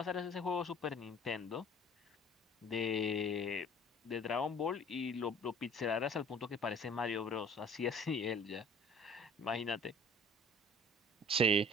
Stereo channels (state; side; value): normal; both; correlation 0.49